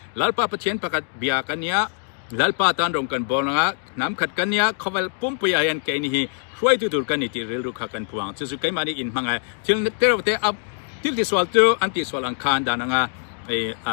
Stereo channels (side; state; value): right; silent; 63 dB below the other